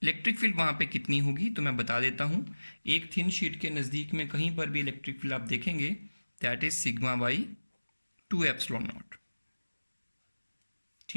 इलेक्ट्रिक फील्ड वहाँ पे कितनी होगी तो मैं बता देता हूँ। एक थिन शीट के नज़दीक में कहीं पर भी इलेक्ट्रिक फील्ड आप देखेंगे, that is sigma by 2 epsilon not.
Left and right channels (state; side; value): inverted; both; correlation -1.00